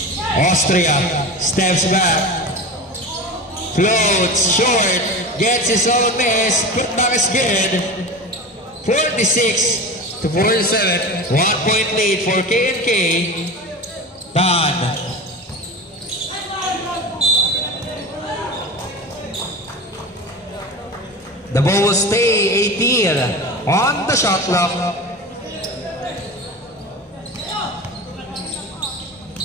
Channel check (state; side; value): normal; both; correlation 0.29